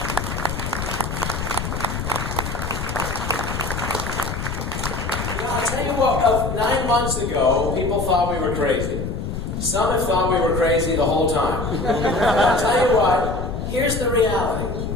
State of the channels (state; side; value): noise; left; rumble, 4 dB below the sound